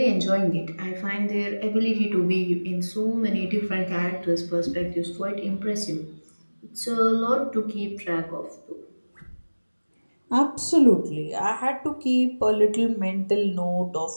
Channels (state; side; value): inverted; both; correlation -1.00